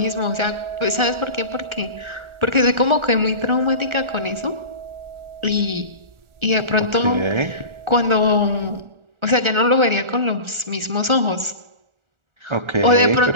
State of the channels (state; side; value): late; left; 1.4 ms